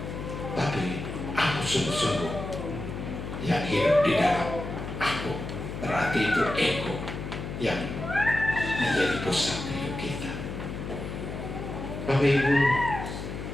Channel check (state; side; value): noise; left; hum, 7 dB below the sound